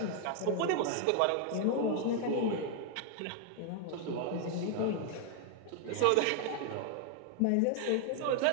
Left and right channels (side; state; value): both; different; correlation 0.00